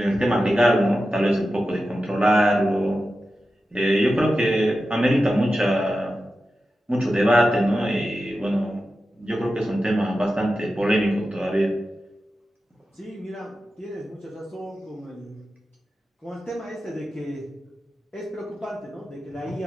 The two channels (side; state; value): both; normal; correlation 0.92